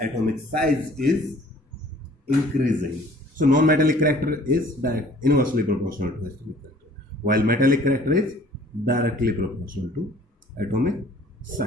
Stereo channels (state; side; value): normal; both; correlation 0.53